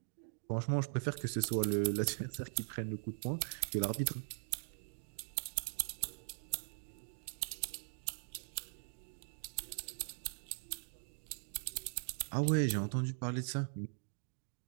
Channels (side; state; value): left; silent; digital silence